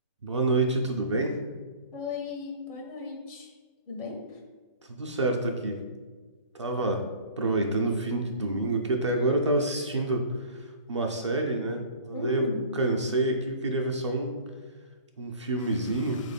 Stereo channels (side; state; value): both; inverted; correlation -0.45